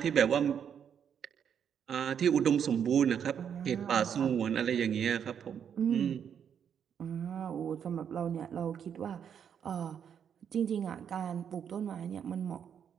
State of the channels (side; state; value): left; quieter; 8.1 dB